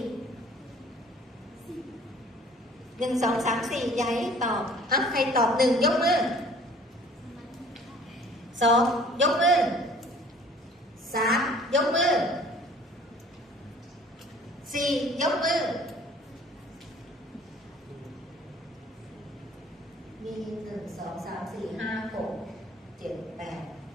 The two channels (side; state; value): both; normal; correlation 0.51